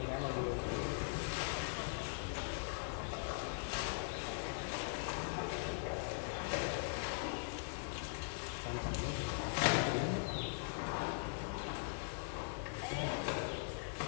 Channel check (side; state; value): right; silent; digital silence